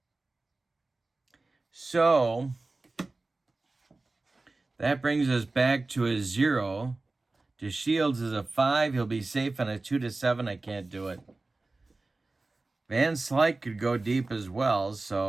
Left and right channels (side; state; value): left; quieter; 3.3 dB